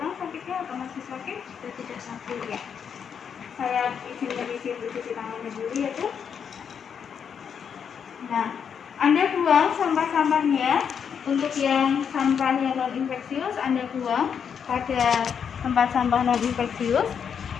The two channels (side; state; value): right; quieter; 7.3 dB